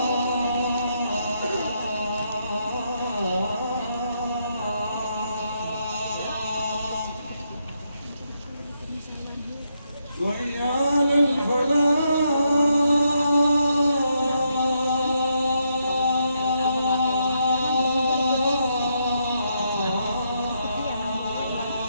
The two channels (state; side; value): inverted; both; correlation -0.78